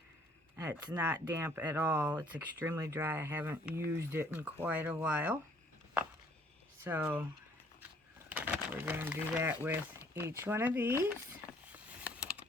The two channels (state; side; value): normal; both; correlation 0.61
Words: It's not damp at all. It's extremely dry. I haven't used it in quite a while. So we're going to do that with each one of these.